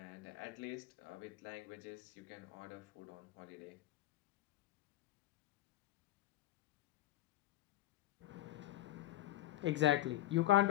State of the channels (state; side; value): quieter; right; 14.8 dB